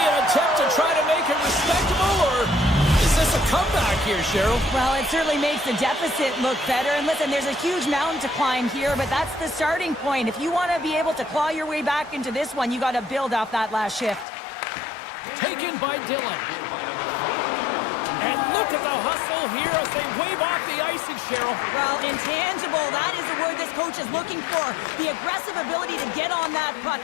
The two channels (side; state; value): right; drops out; at 14.2 s